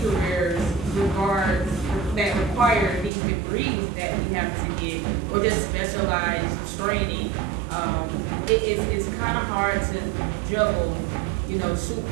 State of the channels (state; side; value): drops out; left; at 3.1 s